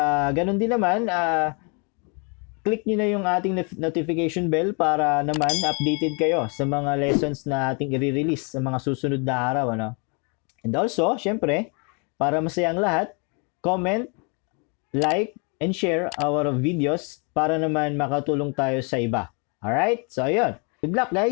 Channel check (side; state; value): right; quieter; 35.2 dB